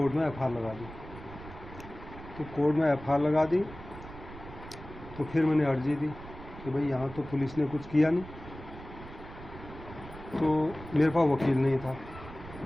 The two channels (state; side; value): noise; right; rumble, 15 dB below the sound